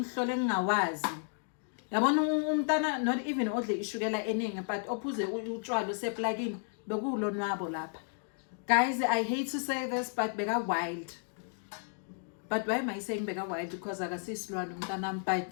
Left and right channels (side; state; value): right; silent; 56 dB below the other